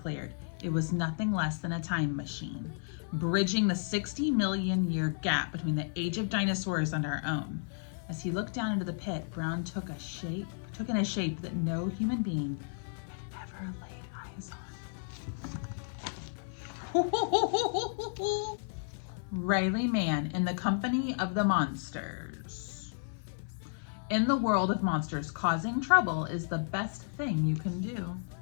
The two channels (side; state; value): right; silent; 56 dB below the other